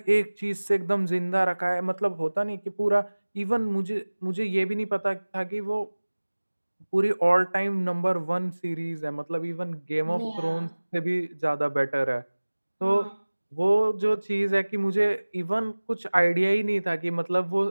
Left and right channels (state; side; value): inverted; both; correlation -1.00